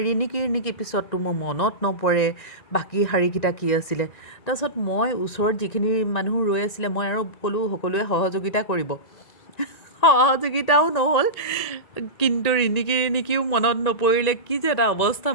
ৰিণিকি পিছততো মোৰ মনত নপৰে বাকী শাৰীকেইটা কি আছিলে। তাৰপিছত মই ওচৰত যিখিনি মানুহ ৰৈ আছিলে, মই আৰু ক'লোঁ সকলোৱে সহযোগিতা কৰিব। সহযোগিতাও নহ'ল, কিন্তু ৰিণিকিও মনত নপৰিলে। কি যে এটা অৱস্থা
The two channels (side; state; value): right; late; 1.9 ms